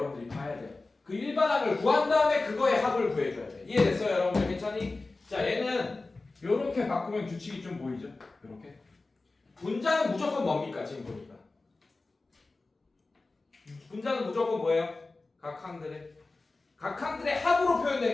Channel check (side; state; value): right; quieter; 3.4 dB